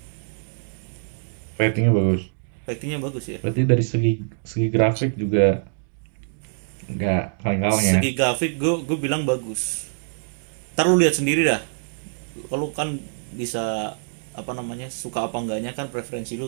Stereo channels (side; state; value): left; silent; digital silence